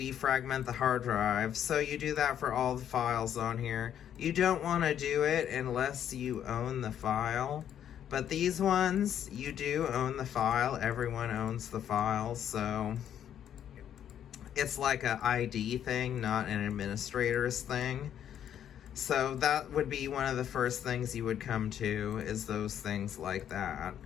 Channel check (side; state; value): right; quieter; 9.8 dB